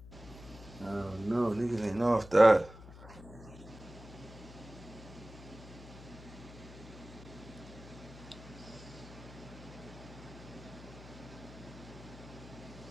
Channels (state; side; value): noise; left; hum, 16 dB below the sound